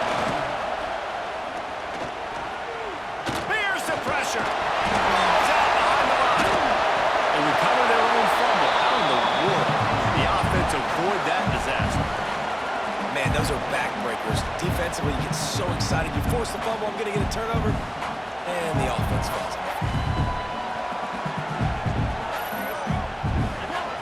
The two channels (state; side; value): identical; both; correlation 1.00